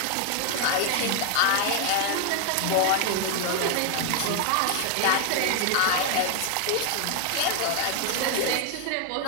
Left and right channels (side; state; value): both; different; correlation 0.00